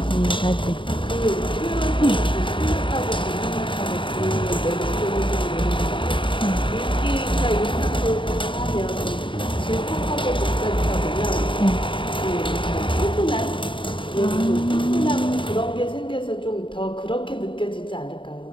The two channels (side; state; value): right; late; 0.24 ms